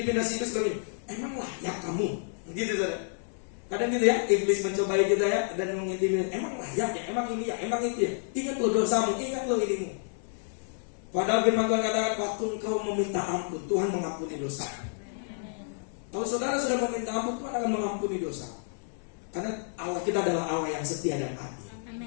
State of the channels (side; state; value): right; silent; digital silence